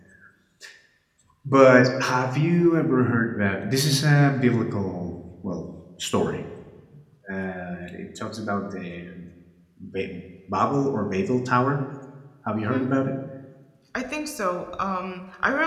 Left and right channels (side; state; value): both; identical; correlation 1.00